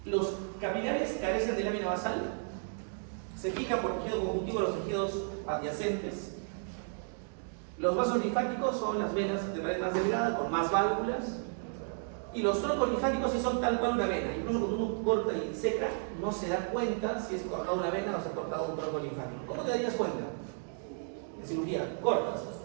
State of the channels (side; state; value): left; silent; 56 dB below the other